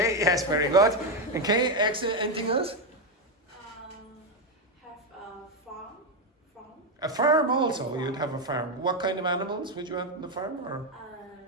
yes, very good. Okay, excellent. Anything else? Have a farm. A farm also. You'd have a farm. What kind of animals would you have on the farm? Or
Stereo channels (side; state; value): both; normal; correlation 0.07